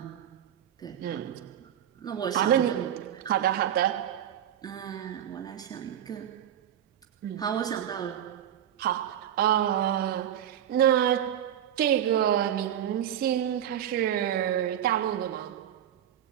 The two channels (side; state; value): left; quieter; 10.5 dB